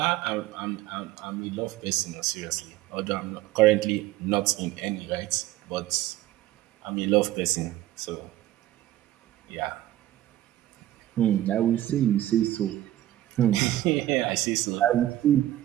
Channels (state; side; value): quieter; left; 14.3 dB